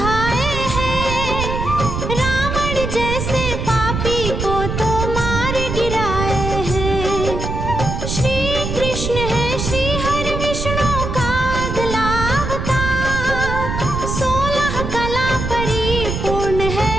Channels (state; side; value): noise; right; rumble, 3 dB below the sound